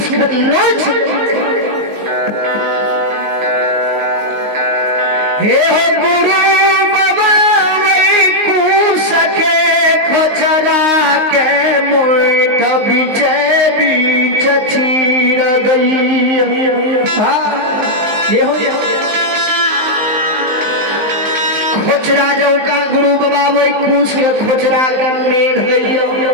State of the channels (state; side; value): late; left; 19 ms